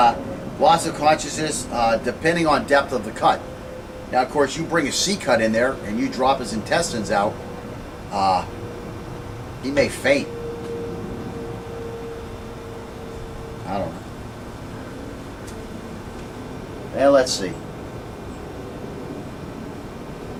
loss of consciousness depending on depth of the cut. Now, of course, you bring a C cut in there and you drop his intestines out, he may faint. I don't know. And let's see.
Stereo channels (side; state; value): both; identical; correlation 1.00